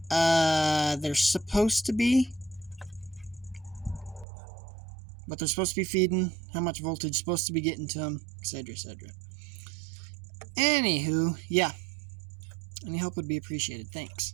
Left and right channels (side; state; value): left; drops out; at 4.2 s